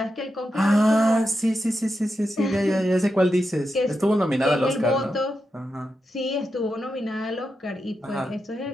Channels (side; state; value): both; normal; correlation 0.88